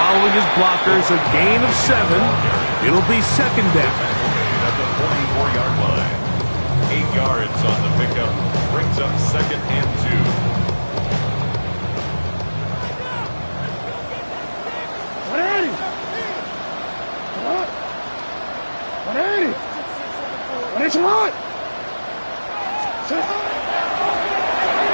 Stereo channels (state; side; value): inverted; both; correlation -1.00